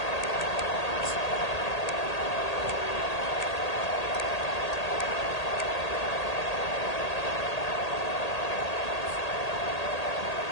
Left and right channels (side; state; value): right; late; 1.8 ms